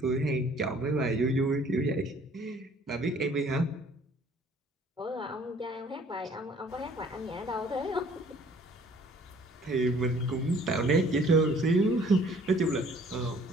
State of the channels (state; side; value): normal; both; correlation 0.56